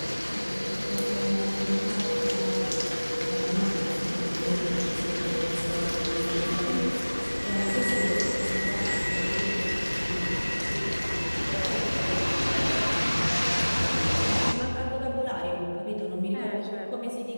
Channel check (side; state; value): both; inverted; correlation -1.00